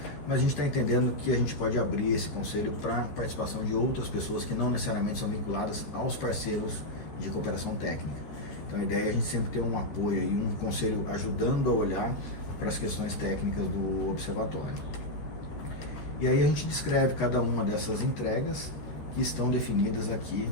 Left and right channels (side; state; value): right; late; 13 ms